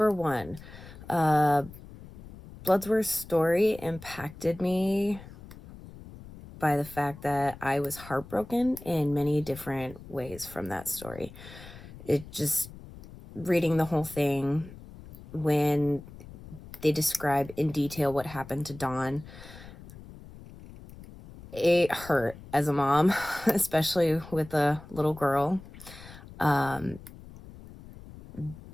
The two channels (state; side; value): noise; left; rumble, 17 dB below the sound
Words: one, uh, Bloodsworth's story impacted me by the fact that I was heartbroken in many different ways from that story. It just, reading the whole thing, when they describe in detail what happened to Dawn, it hurt as a mom, especially with a little girl. Um,